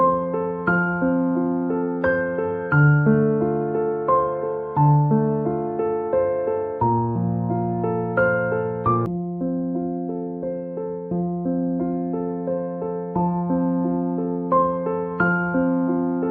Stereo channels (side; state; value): both; identical; correlation 1.00